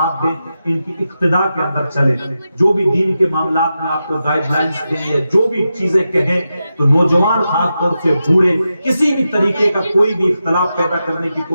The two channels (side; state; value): both; inverted; correlation -0.89